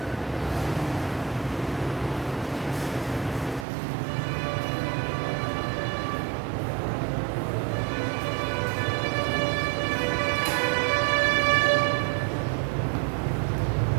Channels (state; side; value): drops out; left; at 3.7 s